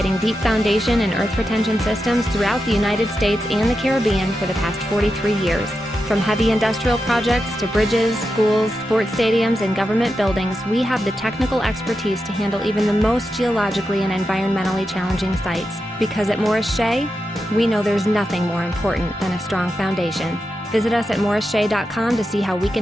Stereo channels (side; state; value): both; normal; correlation 0.88